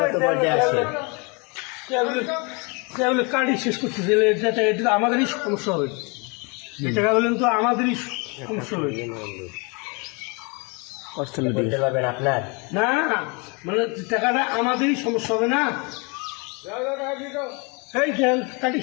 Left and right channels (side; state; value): right; quieter; 30.9 dB